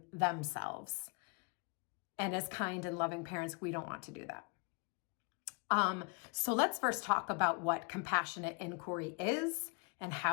themselves. And as kind and loving parents, we don't want to do that. So let's first talk about what compassionate inquiry is and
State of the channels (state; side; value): quieter; right; 33.8 dB